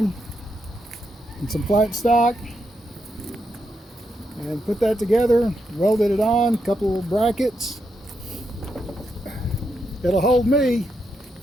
and some flat stock and put that together, welded it on, a couple of brackets. It'll hold me,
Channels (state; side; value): normal; both; correlation 0.82